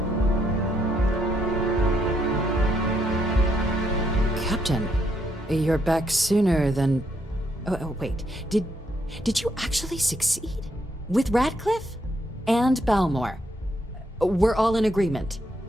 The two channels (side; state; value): both; normal; correlation 0.75